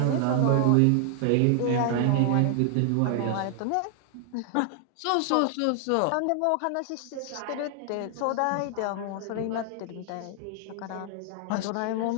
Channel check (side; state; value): both; different; correlation 0.00